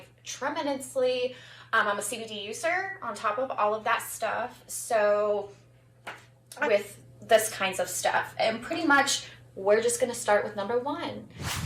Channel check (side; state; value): both; identical; correlation 1.00